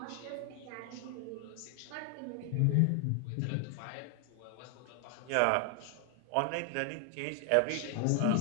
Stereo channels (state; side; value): different; both; correlation 0.00